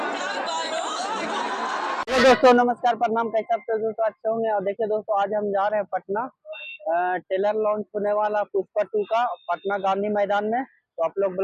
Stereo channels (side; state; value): both; identical; correlation 1.00